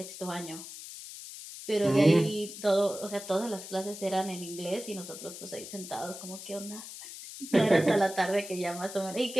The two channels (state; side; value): noise; left; hiss, 12 dB below the sound